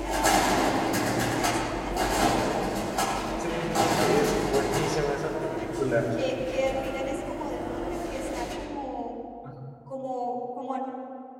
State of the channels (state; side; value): identical; both; correlation 1.00